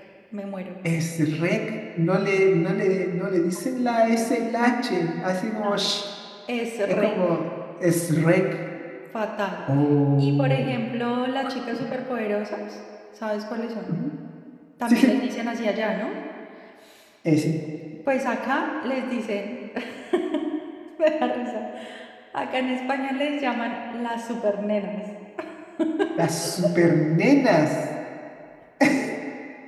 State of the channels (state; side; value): identical; both; correlation 1.00